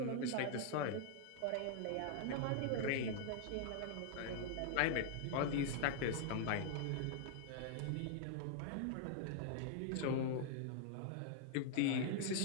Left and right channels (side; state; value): both; different; correlation -0.01